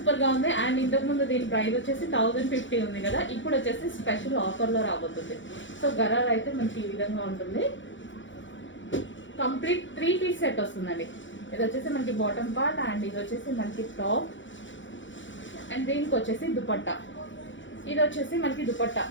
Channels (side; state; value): right; late; 0.55 ms